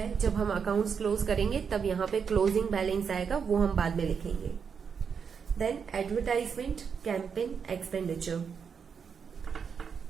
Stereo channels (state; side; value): quieter; left; 6.5 dB